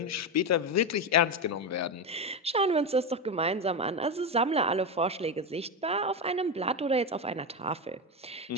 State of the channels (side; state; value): both; normal; correlation 0.13